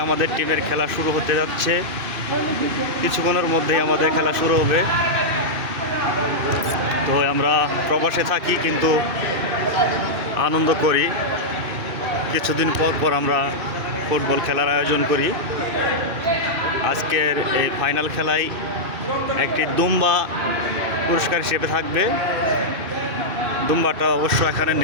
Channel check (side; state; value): left; late; 2.6 ms